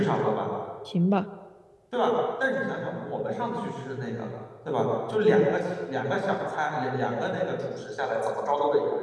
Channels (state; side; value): identical; both; correlation 1.00